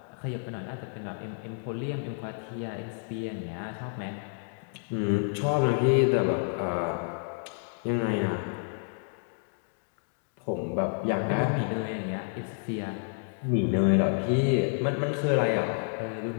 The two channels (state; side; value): silent; right; 58 dB below the other